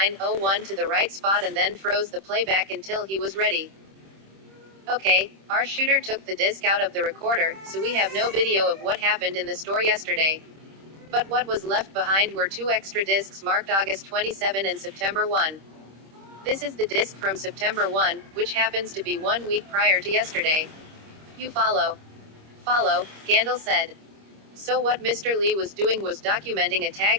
to the right spot and then froze the playback until he was ready. Okay, our shooter took the disc out of the recorder, so we have no video of what happened in the store yesterday. But what was left behind were 2 extra discs marked August 27 and September 1. This is the disc from September 1, which happens to be 1 week prior to yesterday. You follow? Follow, Gandil said. So what Mr. Lee was doing was documenting a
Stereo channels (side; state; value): left; late; 26 ms